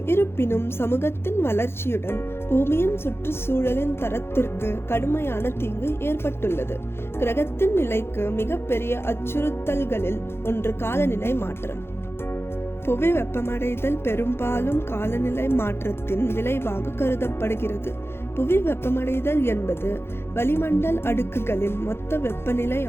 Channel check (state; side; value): late; right; 0.12 ms